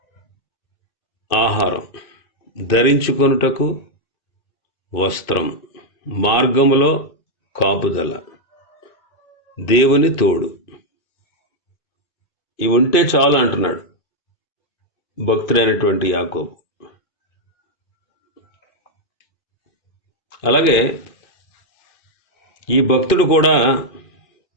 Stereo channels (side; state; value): right; late; 2.5 ms